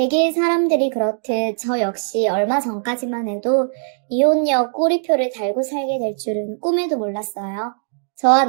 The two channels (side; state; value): left; silent; digital silence